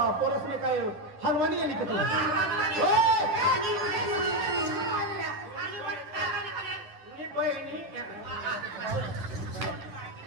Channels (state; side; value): late; left; 10 ms